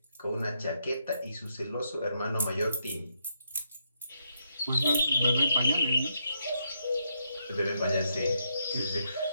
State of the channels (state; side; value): inverted; both; correlation -0.78